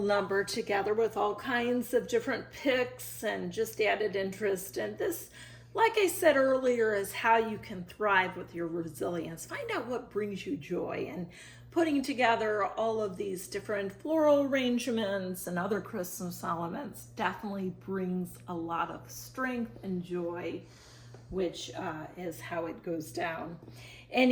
number together with all kinds of different picks and just added interest. And this, like I said earlier, is how you can thrive with your resilience. Find out what brings you joy, and putting together all of these different floral arrangements and other Christmas elements definitely brings a lot of strength and joy, which is how it goes down.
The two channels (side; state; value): both; identical; correlation 1.00